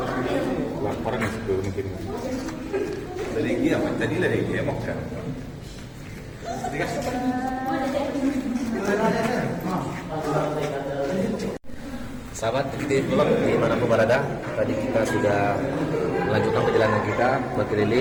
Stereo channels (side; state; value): both; identical; correlation 1.00